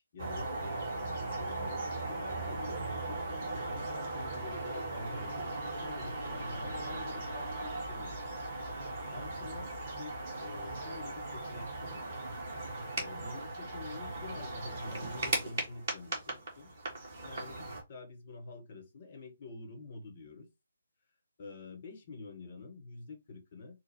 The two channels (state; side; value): inverted; both; correlation -0.73